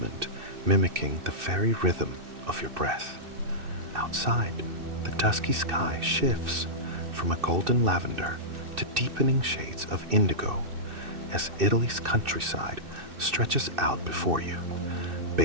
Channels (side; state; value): left; late; 2.6 ms